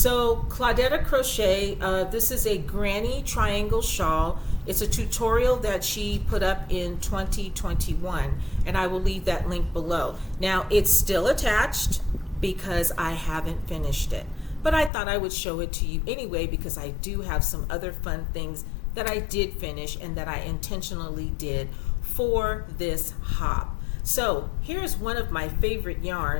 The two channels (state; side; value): drops out; right; at 14.9 s